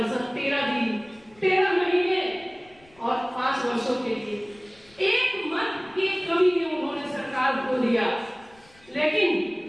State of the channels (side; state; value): left; noise; rumble, 29 dB below the sound